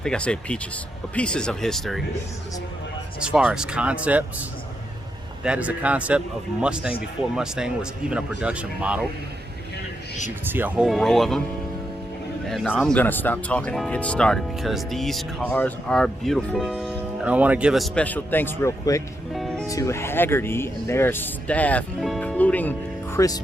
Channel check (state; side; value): normal; both; correlation 0.83